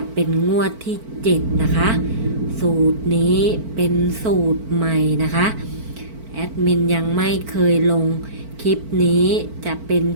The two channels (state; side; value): late; left; 4.5 ms